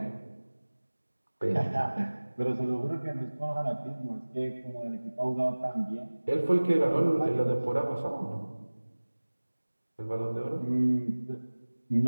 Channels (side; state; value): both; inverted; correlation -1.00